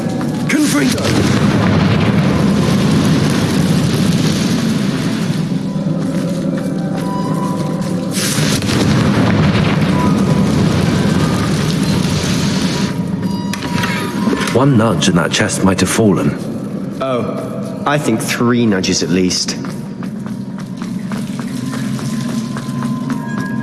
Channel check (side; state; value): both; identical; correlation 1.00